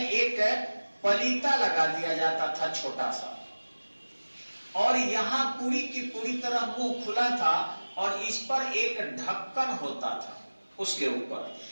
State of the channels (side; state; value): both; inverted; correlation -1.00